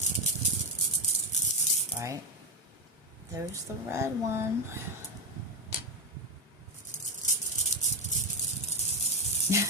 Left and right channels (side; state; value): both; normal; correlation 0.09